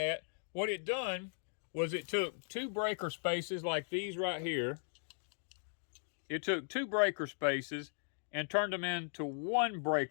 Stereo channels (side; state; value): right; silent; digital silence